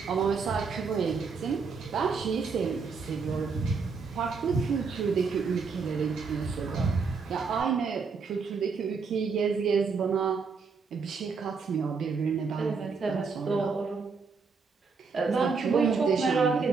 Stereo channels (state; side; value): quieter; left; 5.1 dB